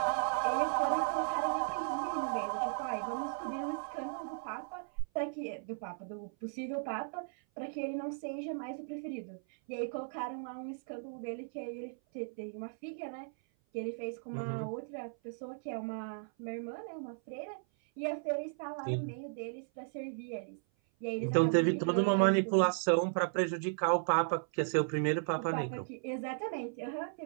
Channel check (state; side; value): silent; left; 54 dB below the other